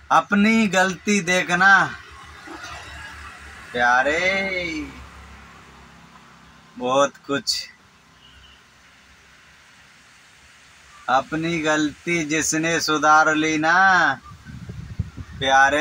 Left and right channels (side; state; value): both; identical; correlation 1.00